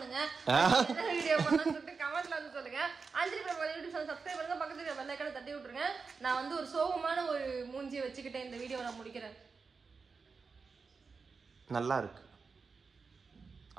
வீடியோ பண்ணணும்னு சொல்லிட்டு கமெண்ட்ல வந்து சொல்லுங்க. அஞ்சலி பிரபா யூடியூப் சேனல் சப்ஸ்கிரைப் பண்ணுங்க, பக்கத்துல பெல் ஐகானை தட்டி விட்டுருங்க. நான் வந்து ஒரு சோகமான ஒரு மூஞ்சியை வச்சுக்கிட்டு இந்த வீடியோவை நான் முடிக்கிறேன். நல்லா இருக்கு,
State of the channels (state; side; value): quieter; left; 4.9 dB